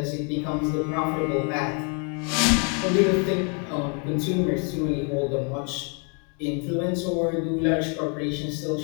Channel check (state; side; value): quieter; right; 37.8 dB